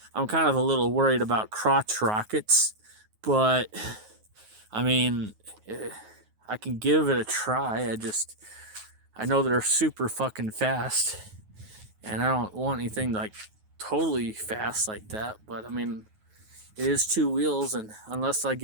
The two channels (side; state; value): left; late; 9.4 ms